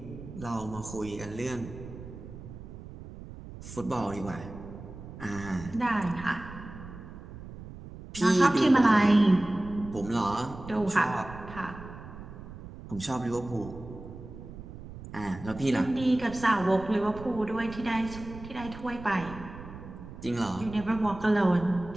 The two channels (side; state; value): right; noise; rumble, 13 dB below the sound